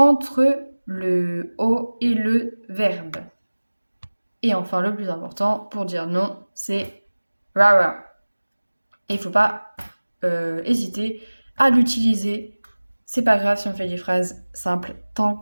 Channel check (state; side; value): inverted; both; correlation -1.00